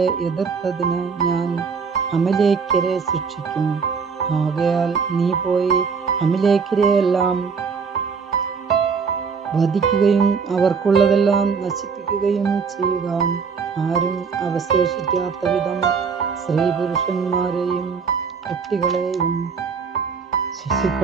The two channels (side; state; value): left; quieter; 5.7 dB